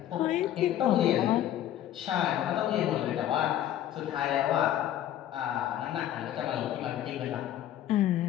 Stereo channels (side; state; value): right; quieter; 11.9 dB